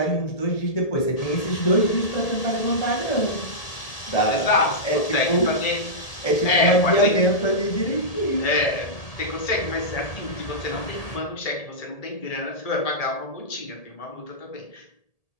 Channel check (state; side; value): late; right; 1.8 ms